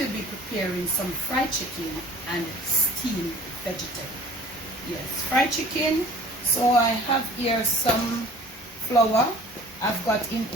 be preparing some fried chicken and steamed vegetable. Yes, fried chicken. So I have here some flour. I've got in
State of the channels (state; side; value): normal; both; correlation 0.47